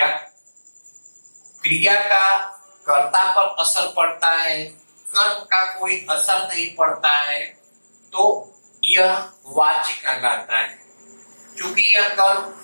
क्रिया का कर्ता पर असर पड़ता है, कर्म का कोई असर नहीं पड़ता है, तो यह वाच्य कहलाता है। क्योंकि यह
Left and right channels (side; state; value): both; inverted; correlation -1.00